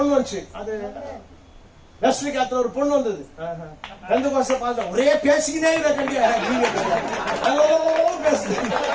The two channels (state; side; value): identical; both; correlation 1.00